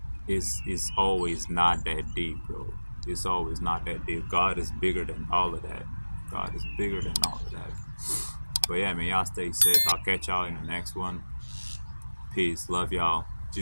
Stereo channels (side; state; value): both; inverted; correlation -1.00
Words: it's always not that deep, bro. It's always not that deep. God is bigger than all of that. God is bigger than all of that. But yeah, man, y'all stay safe. I'll catch y'all in the next one. Peace. Love y'all.